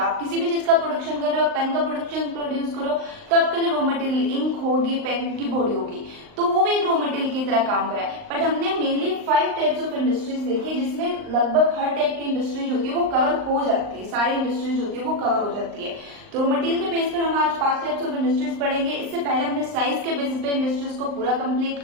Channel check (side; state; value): left; late; 38 ms